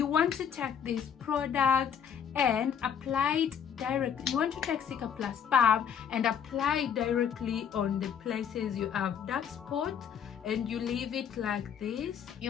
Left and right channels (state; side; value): quieter; right; 8.0 dB